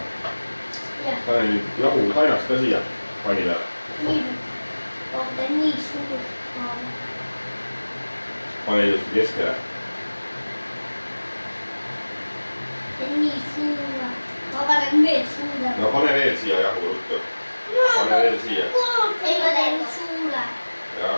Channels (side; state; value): both; inverted; correlation -1.00